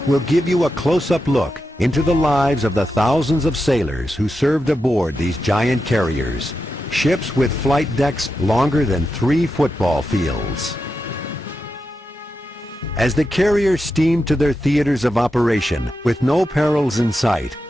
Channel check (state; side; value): normal; both; correlation 0.88